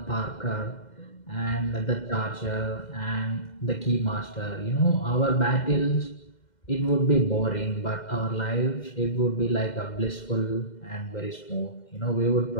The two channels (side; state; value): right; late; 2.1 ms